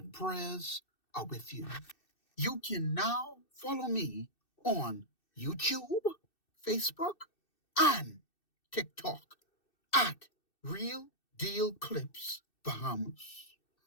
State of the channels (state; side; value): late; right; 2.6 ms